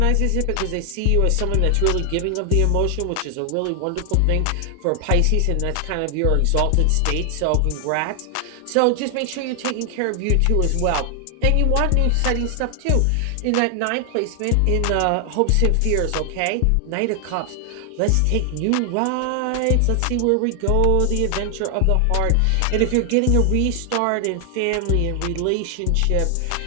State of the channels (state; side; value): different; both; correlation 0.00